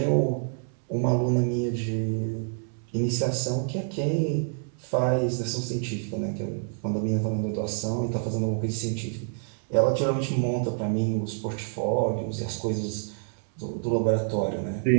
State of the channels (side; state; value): left; silent; 60 dB below the other